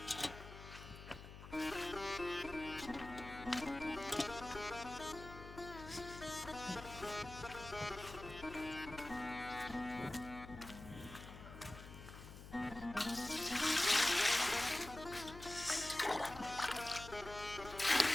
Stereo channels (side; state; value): left; noise; hum, 13 dB below the sound